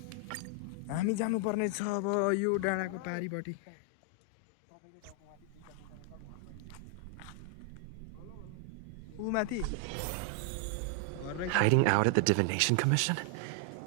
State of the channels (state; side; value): different; both; correlation 0.00